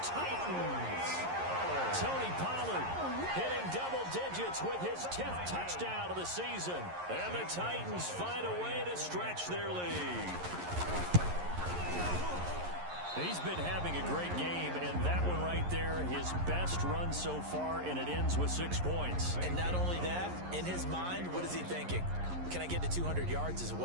Titans. Tony Pollard hitting double digits with his 10th touchdown of the season. And the Titans find a way to stretch their lead. He's been having a great game, and that one right there, his best run so far, and it ends with 6 points. And not only that, in his mind, what is he thinking? Can I get to 200 yards as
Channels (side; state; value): left; late; 11 ms